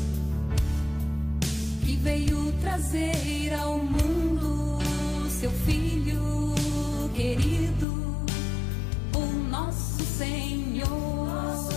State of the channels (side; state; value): right; drops out; at 7.9 s